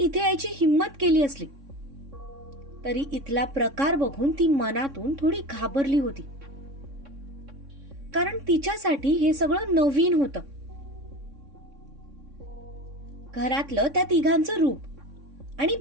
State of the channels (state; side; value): late; left; 3.6 ms